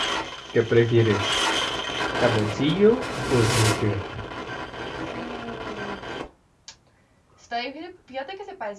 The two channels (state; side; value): identical; both; correlation 1.00